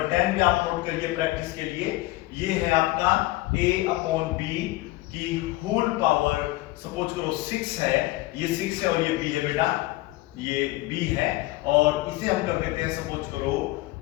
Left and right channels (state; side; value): quieter; right; 19.0 dB